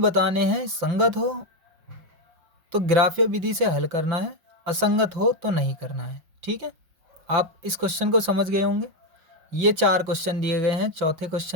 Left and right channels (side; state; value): left; late; 5.5 ms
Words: बताने हैं, संगत हो तो ग्राफ्य विधि से हल करना है, असंगत हो तो नहीं करना है। ठीक है, आप इस क्वेश्चन को समझ गए होंगे। ये 4 क्वेश्चन दिए गए हैं। चौथे